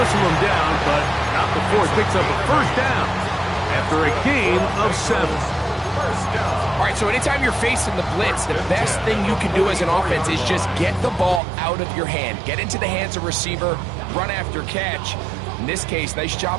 him down, but not before it picks up a first down after a gain of 7. All right, so anytime you're facing the blitz, the best thing you can do as an offense is just get the ball out of your hand. Get into the hands of receiver, run after catch. In this case, nice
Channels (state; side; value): drops out; left; at 11.4 s